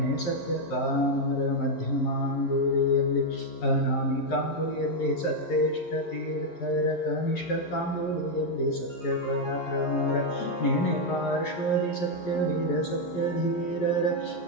ಸತ್ಯ ಕಾಮರ ಮಧ್ಯಮಾಂಗುಲಿಯಲ್ಲಿ ಅನಾಮಿಕಾಂಗುಲಿಯಲ್ಲಿ ಸತ್ಯೇಷ್ಟ ತೀರ್ಥರ ಕನಿಷ್ಠ ಕಾಂಗುಲಿಯಲ್ಲಿ ಸತ್ಯಪರಾಕ್ರಮರ ನೆನೆ ಪಾರ್ಶ್ವದಿ ಸತ್ಯವೀರ ಸತ್ಯಧೀರರ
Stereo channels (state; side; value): late; right; 11 ms